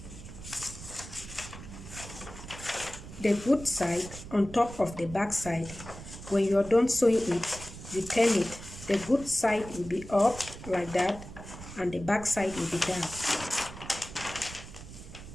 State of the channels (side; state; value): right; noise; rumble, 13 dB below the sound